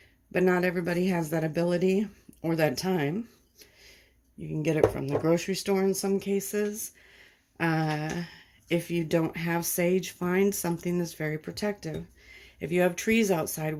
But not everybody has that ability or that time. You can get it from the grocery store in some cases. If you don't have sage, find something that's very protective. If you have trees outside,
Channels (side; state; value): both; identical; correlation 1.00